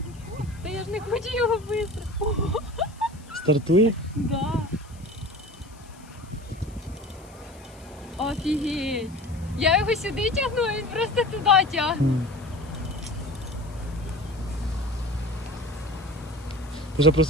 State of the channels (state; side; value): noise; left; hiss, 25 dB below the sound